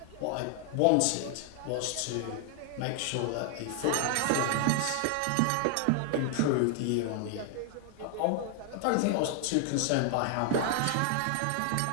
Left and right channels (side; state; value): both; different; correlation 0.00